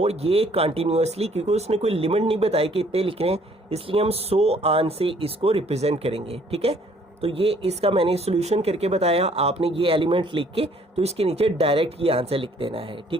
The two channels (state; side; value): normal; both; correlation 0.61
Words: ये कंटिन्यूसली, क्योंकि उसने कोई लिमिट नहीं बताई कि इतने लिख रहे हैं, इसलिए हम 100 आन से इसको रिप्रेजेंट करेंगे, ठीक है। तो ये इसका मैंने सोल्यूशन करके बताया, आपने ये एलिमेंट लिख के तो इसके नीचे डायरेक्ट ये आंसर लिख देना है,